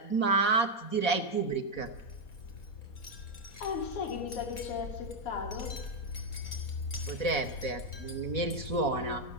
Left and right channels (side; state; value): right; late; 4.2 ms